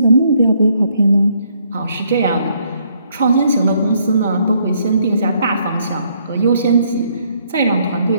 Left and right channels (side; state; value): both; inverted; correlation -0.70